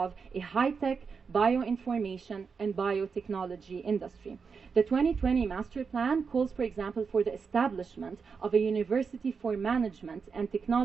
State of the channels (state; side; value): quieter; left; 5.5 dB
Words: a high-tech bioinformation and biotechnology industry. The 2020 Master Plan calls, for example, for the establishment of a university for management and